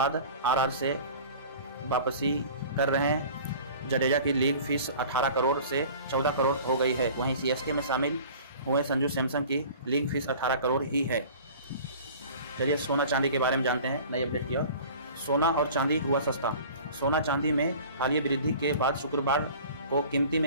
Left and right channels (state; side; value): inverted; both; correlation -0.43